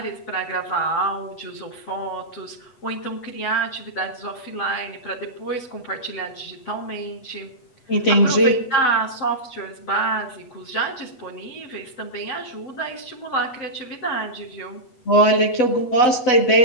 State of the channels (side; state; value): right; late; 8.1 ms